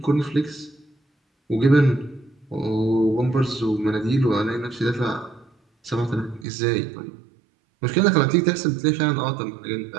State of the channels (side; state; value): left; drops out; at 6.5 s